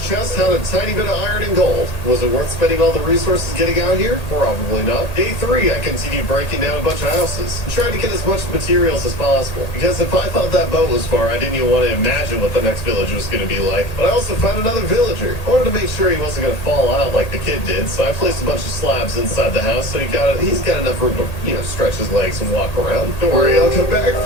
chest had a tiny bit of iron and gold. Was it worth spending all the resources getting out here? Probably not. Day 3, I continued breaking down a bunch of houses and tried to get as much materials as possible. Because if I thought that boat was far, I didn't even want to imagine what the next village was going to be like. But I also found another villager. I wanted to make sure he wasn't going to fall out like the kid did, so I placed a bunch of slabs inside the house so he's got enough room to, stretch his legs and walk around. Don't worry, I'll come back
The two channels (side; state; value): right; late; 1.8 ms